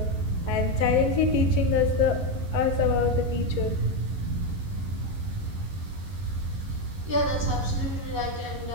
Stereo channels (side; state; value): left; late; 11 ms